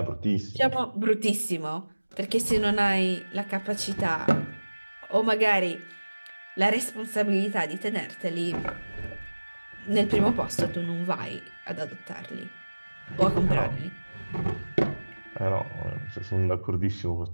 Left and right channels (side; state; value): both; inverted; correlation -1.00